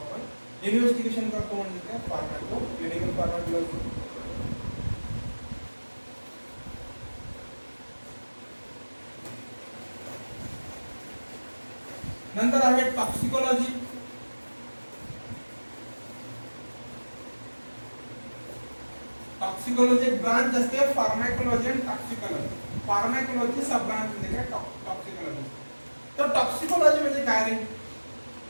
आपण investigation करतो म्हणजे काय pharmaco clinical pharmacology. नंतर आहे toxicology. Toxicology एक ब्रांच असते फार्माकोलॉजी आणि टॉक्सिकोलॉजी. फार्माकोलॉजी सब ब्रांच म्हणजे काय टॉक्सिकोलॉजी. तर टॉक्सिकोलॉजी म्हणजे काय रे?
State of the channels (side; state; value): both; inverted; correlation -1.00